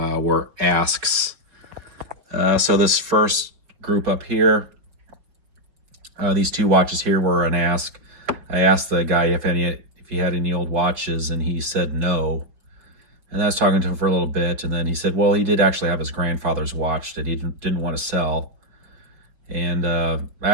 asks. So this first group up here, these 2 watches here were an ask. I asked the guy if he had any old watches, and he said no. And I was talking to him for a little bit, and then he said, well, he did actually have his grandfather's watch that he didn't want to sell. And I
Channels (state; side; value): late; left; 5.4 ms